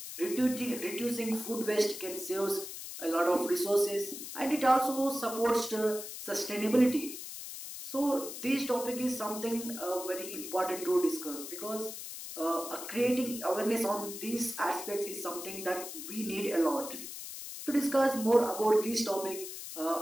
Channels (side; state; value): left; noise; hiss, 9 dB below the sound